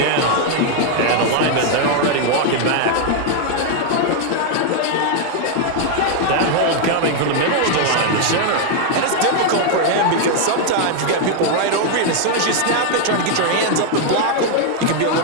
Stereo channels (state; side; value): different; both; correlation 0.00